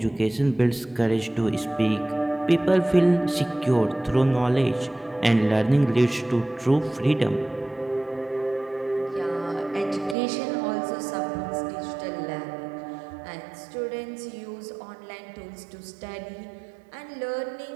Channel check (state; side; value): drops out; left; at 10.2 s